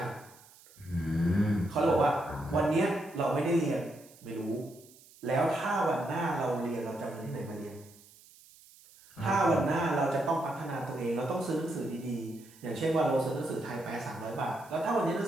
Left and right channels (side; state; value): right; noise; hiss, 24 dB below the sound